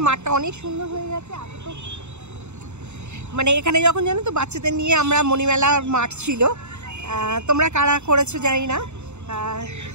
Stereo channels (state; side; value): late; left; 0.82 ms